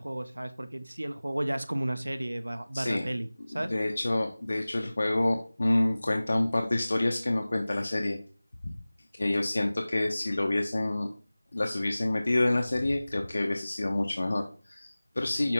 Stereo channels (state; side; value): inverted; both; correlation -0.99